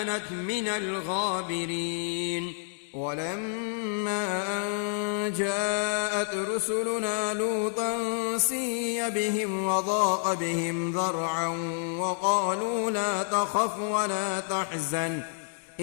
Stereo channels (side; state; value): right; silent; digital silence